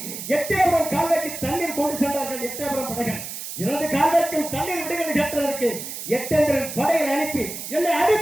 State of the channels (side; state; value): right; noise; hiss, 8 dB below the sound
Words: எட்டயபுரம் கால்வாய்க்கு தண்ணீர் கொண்டு சென்றார்கள். எட்டயபுரம் படைகள் எனது கால்வாய்க்கும் தண்ணீர் விடுங்கள் கேட்டதற்கு எட்டேந்திரன் படைகளை அனுப்பி என்னை